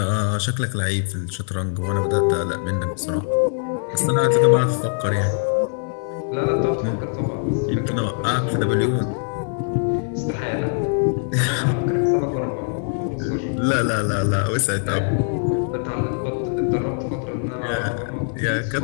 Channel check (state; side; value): silent; right; 62 dB below the other